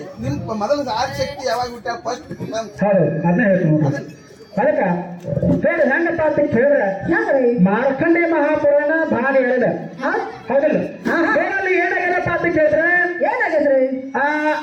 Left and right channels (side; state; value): both; identical; correlation 1.00